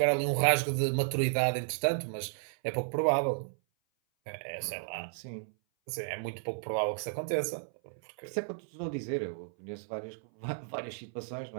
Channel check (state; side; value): silent; left; 56 dB below the other